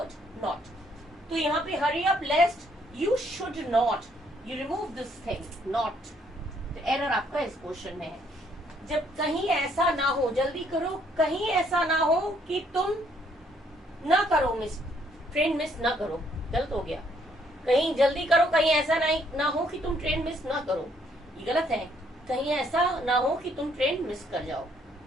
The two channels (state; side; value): normal; both; correlation 0.68